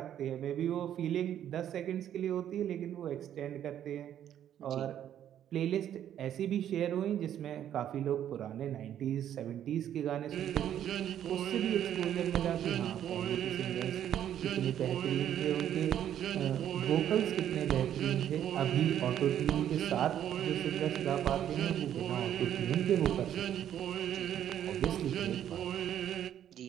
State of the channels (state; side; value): quieter; left; 10.5 dB